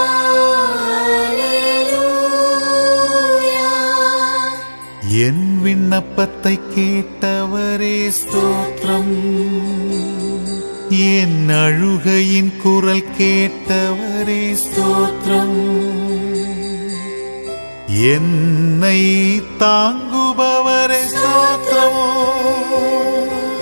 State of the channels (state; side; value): inverted; both; correlation -1.00